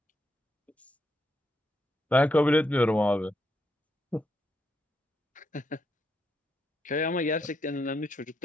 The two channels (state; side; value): normal; both; correlation 0.80